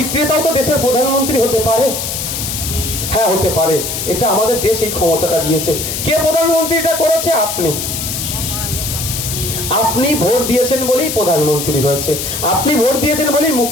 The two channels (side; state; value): left; noise; hiss, 4 dB below the sound